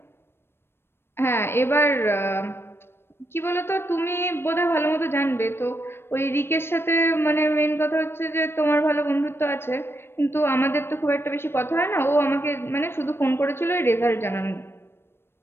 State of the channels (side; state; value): right; late; 0.12 ms